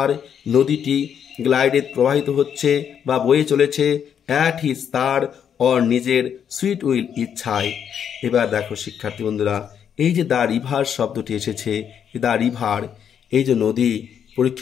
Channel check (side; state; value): right; quieter; 8.3 dB